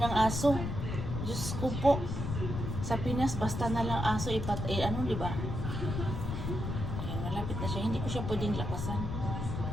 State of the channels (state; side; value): noise; left; rumble, 3 dB below the sound